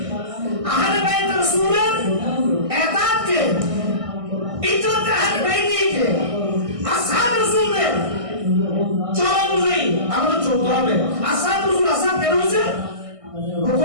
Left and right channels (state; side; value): late; left; 1.6 ms